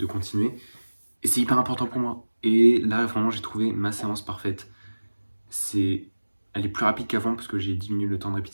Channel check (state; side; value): inverted; both; correlation -1.00